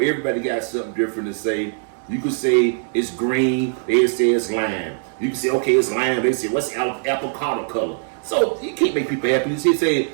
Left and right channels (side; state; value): left; silent; 65 dB below the other